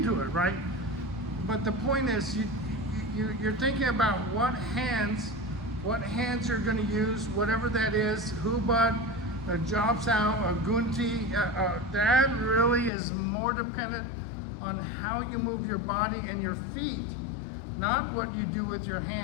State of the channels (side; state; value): right; drops out; at 12.9 s